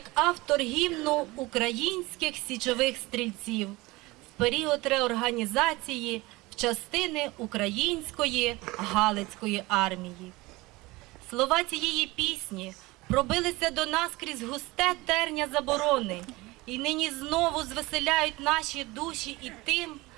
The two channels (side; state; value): left; quieter; 21.6 dB